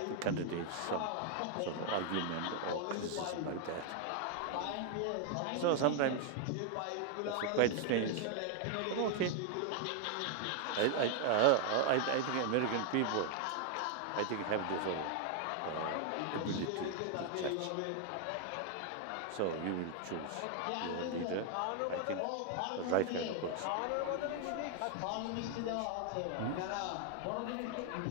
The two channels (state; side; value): different; both; correlation 0.00